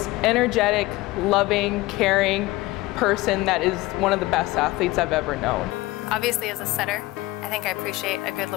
energetic, loving, caring person that is one of the best athletes I've ever known. Obviously, as a setter, I think I appreciate a good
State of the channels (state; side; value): quieter; right; 19.5 dB